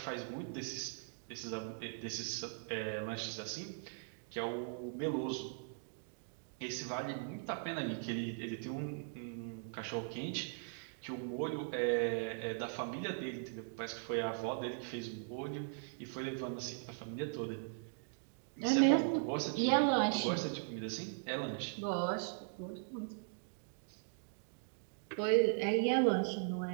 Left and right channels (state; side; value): silent; left; digital silence